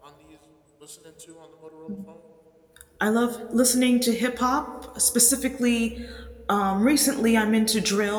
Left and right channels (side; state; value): both; identical; correlation 1.00